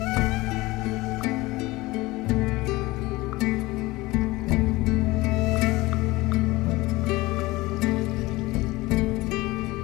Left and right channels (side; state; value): right; quieter; 20.5 dB